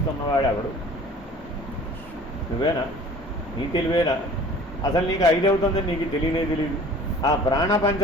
ఎవడు? నువ్వేనా? నీ తెలివేనా? అసలు నీకు 5 అవుతుందని నీకు తెలియదు. ఆ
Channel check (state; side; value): normal; both; correlation 0.46